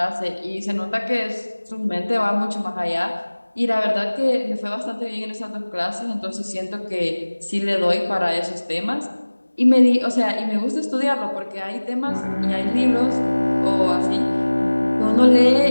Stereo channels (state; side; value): inverted; both; correlation -1.00